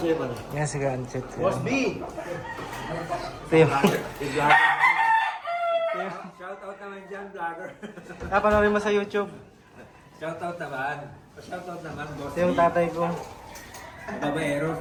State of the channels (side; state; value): both; identical; correlation 1.00